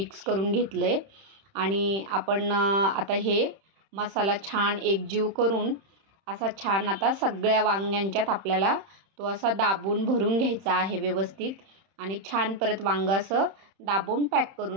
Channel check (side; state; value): left; late; 31 ms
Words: करून घेतलं आहे आणि आपण आता हे मसाला छान एकजीव करून असा छान आता सगळ्या वांग्यांच्यात आपल्याला तो असा दाबून भरून घ्यायचा आहे व्यवस्थित. आणि छान परत वांगं असं दाबून पॅक